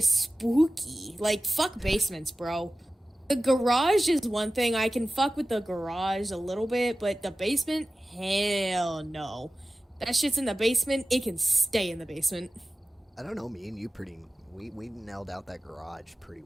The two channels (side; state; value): both; normal; correlation 0.95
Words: spooky. Like, fuck basements, bro. The garage is one thing. I can fuck with the garage a little bit, but the basement? Hell no. That shit's in the basement. It can stay in the basement. I don't know, me and you we nailed out that garage pretty